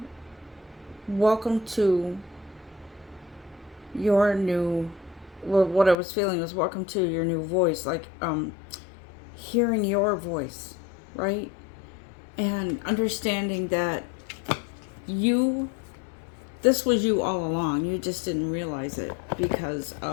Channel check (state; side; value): drops out; right; at 6.0 s